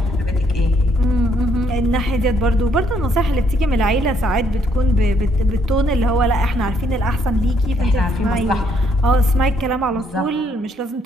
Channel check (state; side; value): normal; both; correlation 0.70